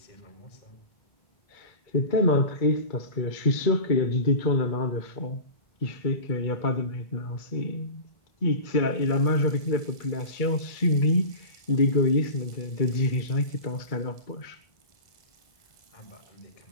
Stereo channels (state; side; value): late; right; 2.3 ms